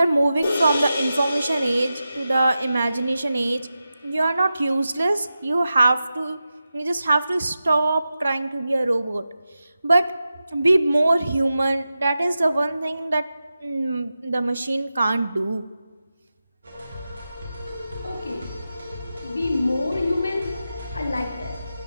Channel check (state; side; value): inverted; both; correlation -0.92